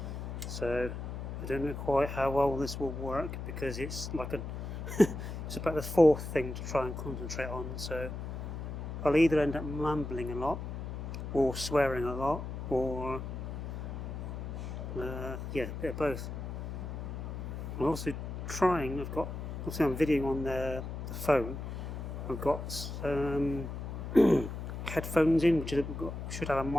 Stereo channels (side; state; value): left; noise; hum, 6 dB below the sound